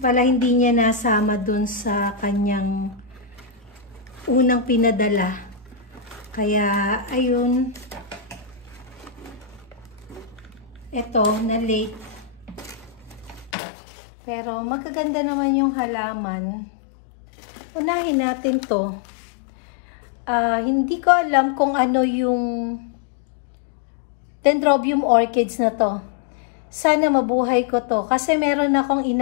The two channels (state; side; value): drops out; right; at 13.6 s